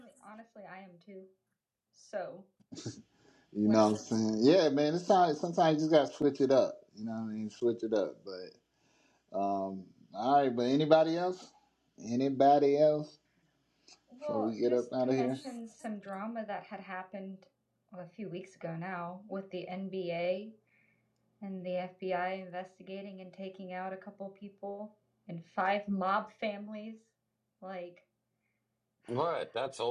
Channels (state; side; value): identical; both; correlation 1.00